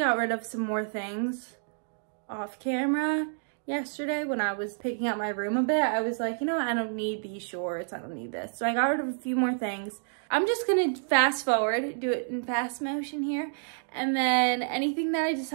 rid of some more things off camera yesterday when I was picking up my room a bit. I was like, you know what? I don't need these shorts. I don't need this. So I got rid of a few more things. I'm just gonna fast forward, do it in fast motion here. And then anything that I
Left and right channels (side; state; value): left; silent; digital silence